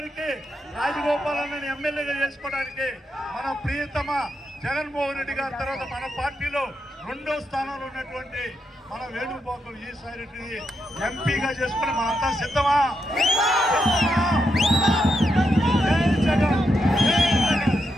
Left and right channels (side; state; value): both; normal; correlation 0.83